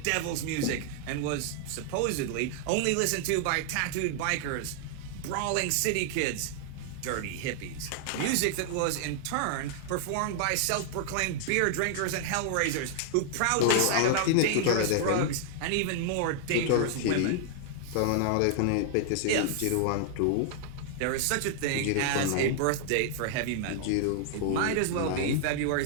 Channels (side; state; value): both; different; correlation -0.01